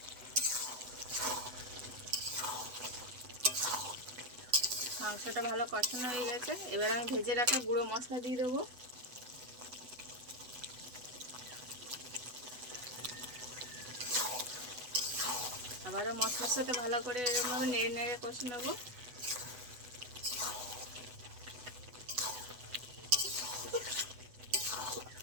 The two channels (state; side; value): late; left; 8.1 ms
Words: মাংসটা ভালো কষানো হয়ে গেছে, এবার আমি ভেজে রাখা গুঁড়ো মশলা দিয়ে দেবো। আবারও মশলার সাথে ভালো করে এরকমভাবে নেড়ে নেড়ে কষে নেব।